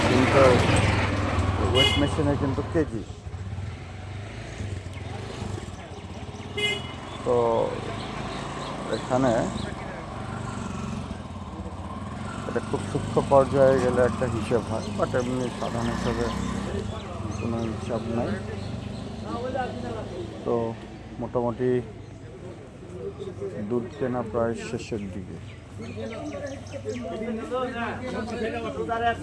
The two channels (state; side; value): identical; both; correlation 1.00